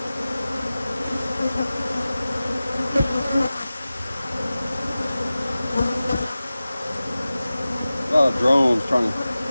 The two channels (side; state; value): both; inverted; correlation -0.97